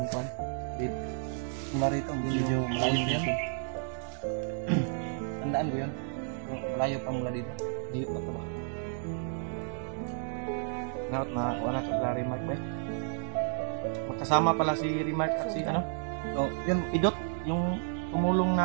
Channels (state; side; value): silent; left; digital silence